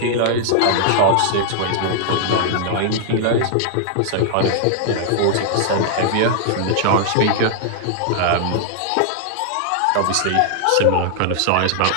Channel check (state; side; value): different; both; correlation -0.01